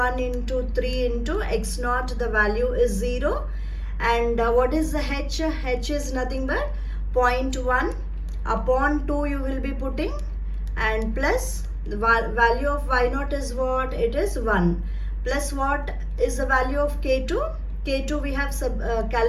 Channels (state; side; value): identical; both; correlation 1.00